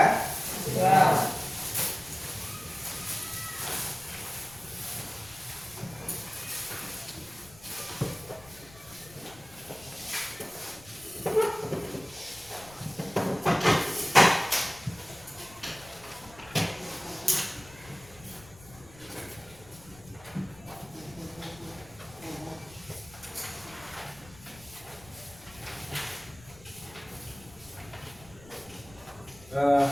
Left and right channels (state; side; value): noise; left; rumble, 21 dB below the sound